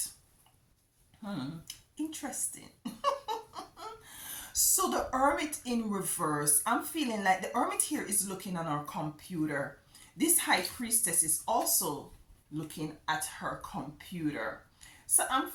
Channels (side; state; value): both; identical; correlation 1.00